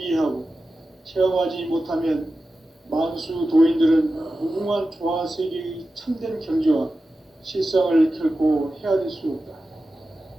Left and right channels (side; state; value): both; normal; correlation 0.93